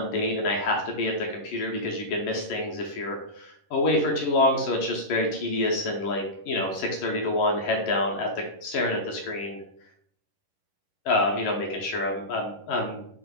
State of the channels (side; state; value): right; late; 11 ms